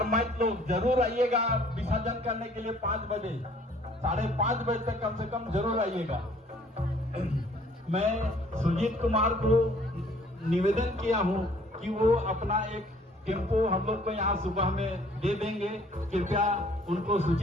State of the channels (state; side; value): normal; both; correlation 0.57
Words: लोग जरूर आइएगा विसर्जन करने के लिए 5 बजे, 5:30 बजे तक कम से कम जरूर आइएगा। मैं सुजीत कुमार को निवेदन किया हूँ कि वो अपना एक टेम्पो हम लोग को यहाँ सुबह में दे देंगे, कृपया उनको